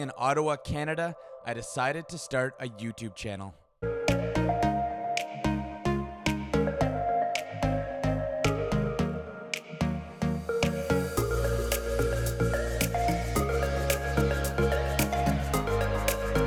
Ottawa, Canada, I decided to start a YouTube channel.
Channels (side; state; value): both; identical; correlation 1.00